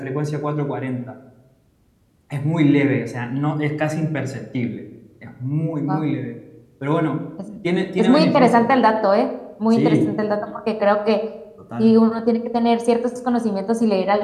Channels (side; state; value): both; identical; correlation 1.00